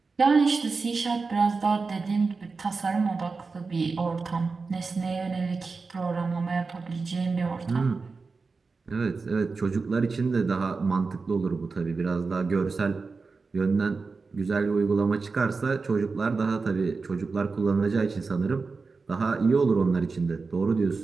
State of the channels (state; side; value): quieter; left; 4.3 dB